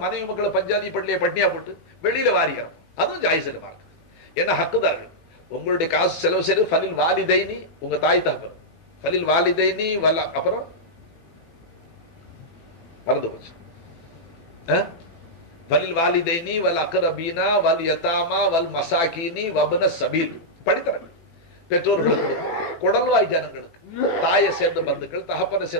மனைவி மக்களை பஞ்சாதி பள்ளியை பட்னியா போட்டு வெளியில வாரிக்கிறோம், அதுவும் ஜாயிஸ் இல்லை மார்க்கு. ஏன்னா ஹக்குதார்கள் உங்களுடைய காசு செலவு செய்து ஃபலில் வாலிதைனி, உங்க தாய் தகப்பன், ஃபலில் வாலிதைனி வல்ல, அப்புறம் மறந்து போச்சு, ஃபலில் வாலிதைனி வல் அக்ரபீனா வல் யதாமா வல் மசாகினி வப்ன சபீல். படித்தரங்கள் பெற்றோர்களுக்கு கொடுக்கும், குடல்வாய் ஜனங்களுக்கு, தாயை சேர்ந்த பந்துக்கள், தகப்பனை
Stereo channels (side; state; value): right; late; 18 ms